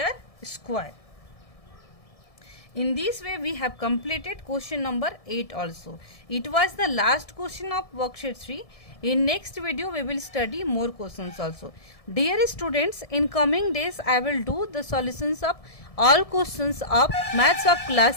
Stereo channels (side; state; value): right; late; 1.7 ms